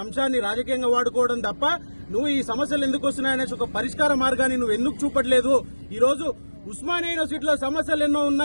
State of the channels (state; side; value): inverted; both; correlation -1.00